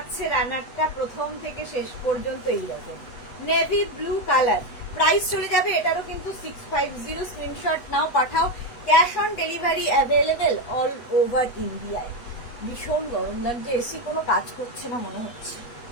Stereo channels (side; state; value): right; late; 8.3 ms